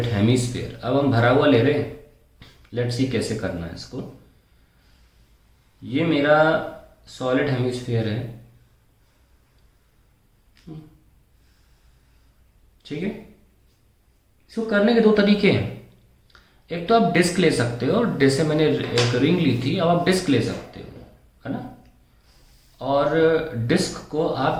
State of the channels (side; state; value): both; identical; correlation 1.00